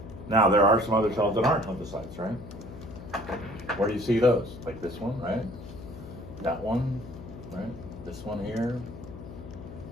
Now, there are some other cells that aren't lymphocytes, right? Where do you see those? Like this one, right? That one, right? This one here.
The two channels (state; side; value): noise; left; hum, 13 dB below the sound